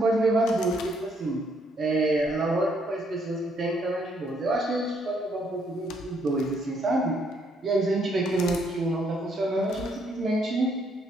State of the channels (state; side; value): normal; both; correlation 0.70